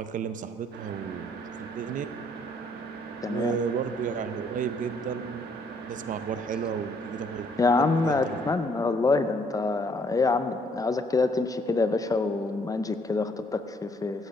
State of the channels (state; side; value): normal; both; correlation 0.65